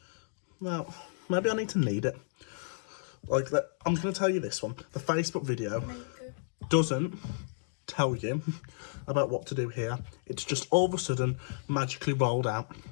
Now, maybe I need to knead it. Like that. I'm going to tell you this one. The Facebook video doesn't tell you about what to do here. It's just all of a sudden magically rolled out.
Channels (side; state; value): right; silent; digital silence